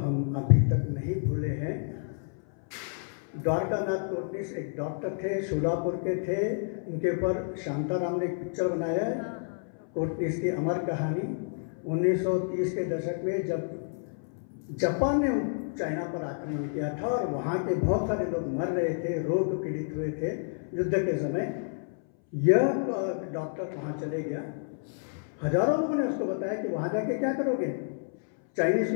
अभी तक नहीं भूले हैं। द्वारकानाथ कोटनिस एक डॉक्टर थे, सोलापुर के थे। उनके ऊपर शांताराम ने एक पिक्चर बनाया है, कोटनिस की अमर कहानी। 1930 के दशक में जब जापान ने चाइना पर आक्रमण किया था और वहाँ के बहुत सारे लोग मर रहे थे, रोग पीड़ित हुए थे युद्ध के समय, यह डॉक्टर वहाँ चले गया। हजारों लोगों ने उसको बताया कि वहाँ जाके क्या करोगे, चाइनीज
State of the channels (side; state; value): right; silent; 58 dB below the other